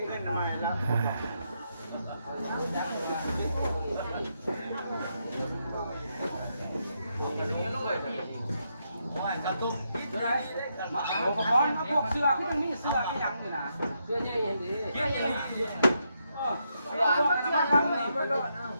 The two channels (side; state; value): both; inverted; correlation -0.79